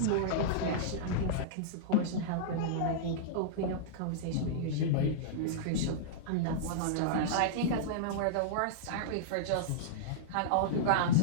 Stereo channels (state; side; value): different; both; correlation -0.03